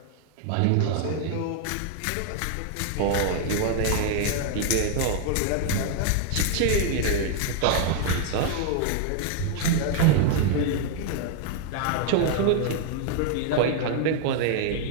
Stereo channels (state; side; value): different; both; correlation 0.00